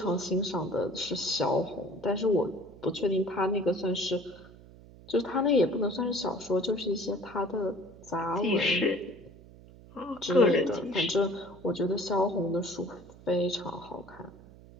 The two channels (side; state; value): right; noise; hum, 21 dB below the sound